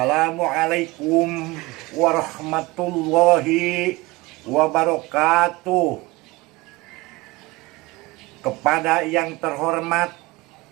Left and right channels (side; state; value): left; quieter; 21.8 dB